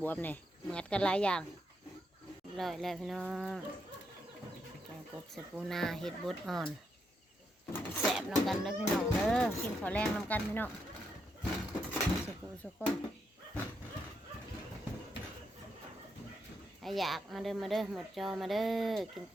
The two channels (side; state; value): both; normal; correlation 0.80